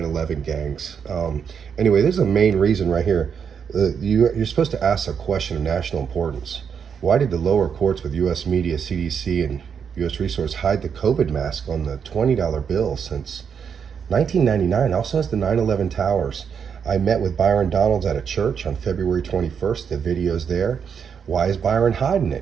gangs. Anyway, this is the main reason right here. You're supposed to ask a question of national importance. Why did the lower courts with U.S. media, CDC, and U.S. Resource hide the COVID mask on the $20 bill since 1999? Also has the 9/11 towers. I met with Byron Donalds at a church on February 21st. The video's there. Why is Byron hiding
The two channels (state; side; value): quieter; left; 7.1 dB